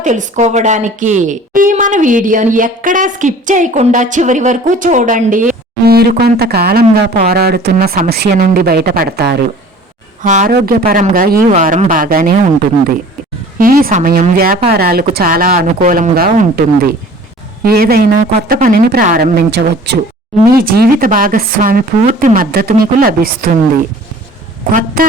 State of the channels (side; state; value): both; normal; correlation 0.47